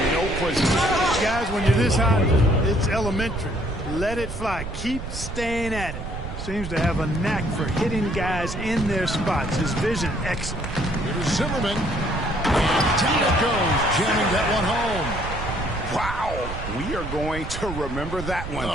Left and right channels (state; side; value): noise; right; rumble, 8 dB below the sound